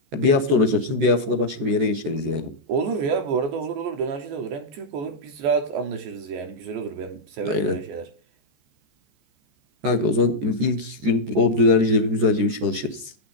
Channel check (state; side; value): late; left; 13 ms